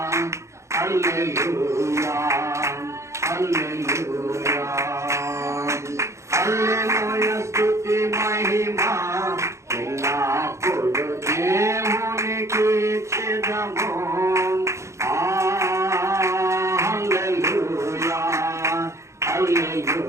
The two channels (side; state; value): left; late; 0.14 ms